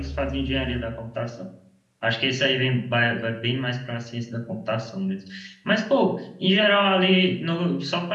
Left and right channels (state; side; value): identical; both; correlation 1.00